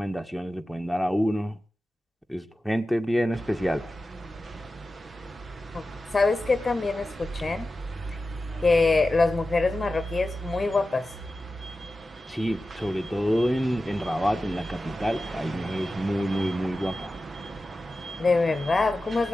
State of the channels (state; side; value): normal; both; correlation 0.94